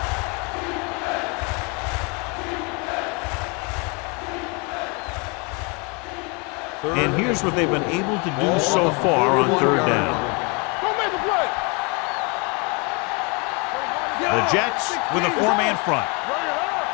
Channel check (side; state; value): right; quieter; 31.0 dB